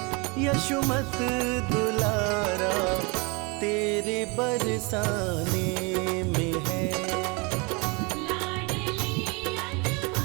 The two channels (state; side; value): quieter; left; 29.6 dB